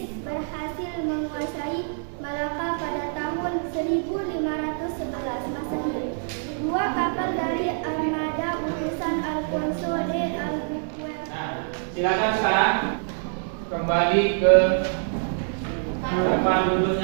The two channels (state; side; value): silent; left; digital silence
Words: berhasil menguasai Malaka pada tahun 1511 Masehi. 2 kapal dari armada utusan Alfonso de Albuquerque. nah, silakan sekarang kembali ke depan